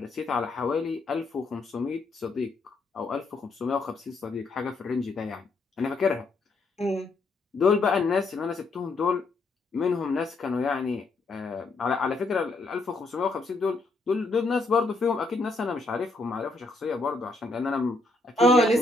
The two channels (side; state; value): right; quieter; 3.3 dB